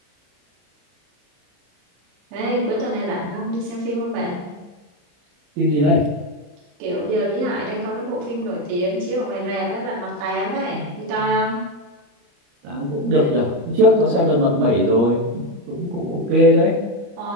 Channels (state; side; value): late; left; 34 ms